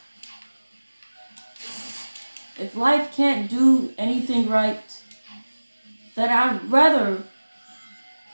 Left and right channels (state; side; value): inverted; both; correlation -1.00